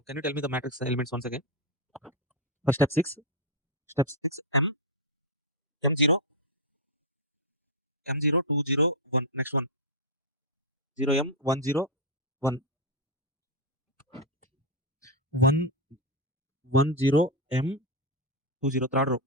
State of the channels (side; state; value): both; normal; correlation 0.03